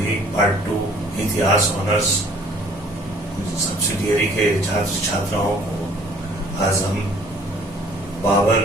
पार्ट 2 इतिहास ऑनर्स सब्सिडियरी के छात्र छात्राओं को आज हम बाबर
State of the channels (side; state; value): both; normal; correlation 0.56